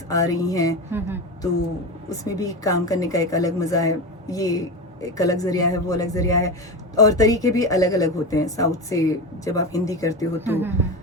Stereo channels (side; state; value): both; normal; correlation 0.21